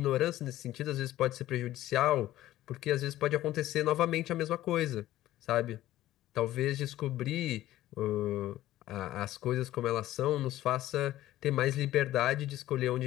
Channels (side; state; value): right; quieter; 14.6 dB